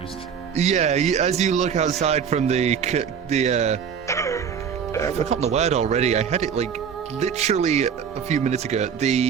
Yeah, as you look outside from I've forgotten the word already. I had it like literally a few minutes ago.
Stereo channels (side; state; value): left; quieter; 7.4 dB